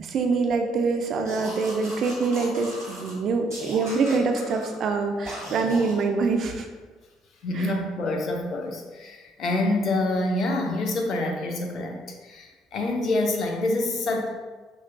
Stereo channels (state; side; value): normal; both; correlation 0.69